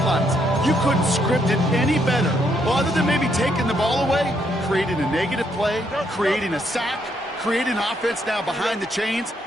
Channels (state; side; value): normal; both; correlation 0.74